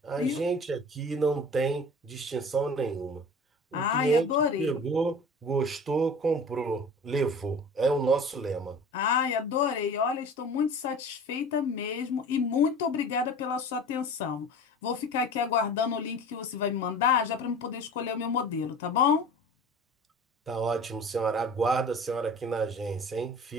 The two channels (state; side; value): normal; both; correlation 0.40